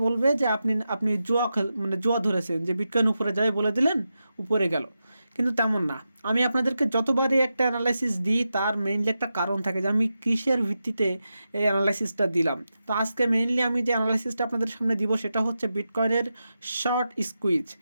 বলবে যে আপনি আপনি জুয়া ধরেছেন, যে বিটকয়েন উপরে যাবে বলে দিলেন, উপরে গেল। কিন্তু তেমন না। আমি আপনাদেরকে যতবারই একটা অ্যানালাইসিস দিই তার মেইনলি একটা কারণ থাকে যে আমি কিসের ভিত্তিতে এই অ্যানালাইসিসটা দিলাম। তো আজকে মেইনলি আমি যে অ্যানালাইসিসটা আপনাদের সামনে দিব সেটা হচ্ছে বিটকয়েনের শর্ট স্কুইজ।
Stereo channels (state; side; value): inverted; both; correlation -0.89